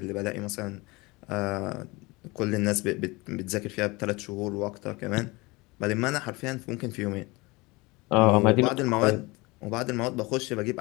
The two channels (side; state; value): right; quieter; 24.0 dB